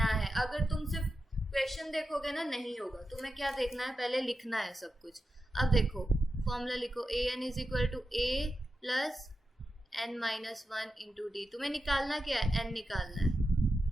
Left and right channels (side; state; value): both; normal; correlation 0.90